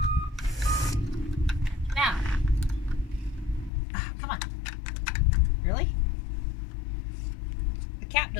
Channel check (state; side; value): drops out; right; at 3.7 s